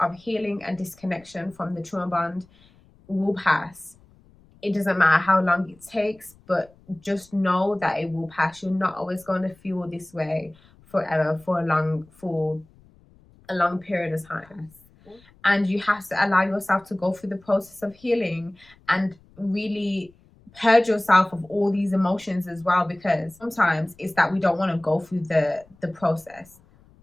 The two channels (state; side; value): noise; left; rumble, 28 dB below the sound